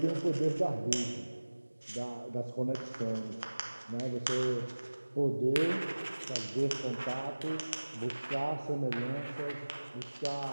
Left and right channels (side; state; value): both; inverted; correlation -1.00